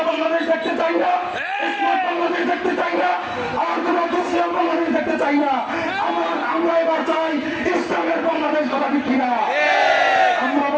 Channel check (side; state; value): both; identical; correlation 1.00